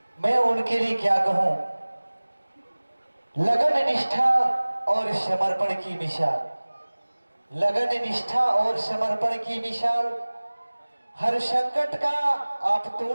मैं उनके लिए क्या कहूं, लगन निष्ठा और समर्पण की मिसाल, लगन निष्ठा और समर्पण की मिसाल। हर संकट का आप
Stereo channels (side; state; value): both; inverted; correlation -1.00